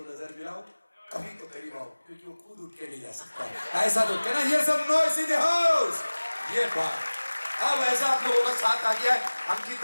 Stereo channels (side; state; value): both; inverted; correlation -1.00